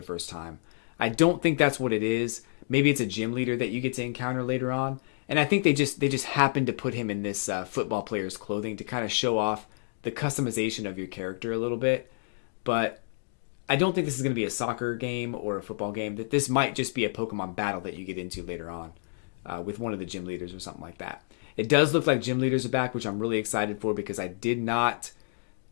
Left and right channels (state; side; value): silent; right; digital silence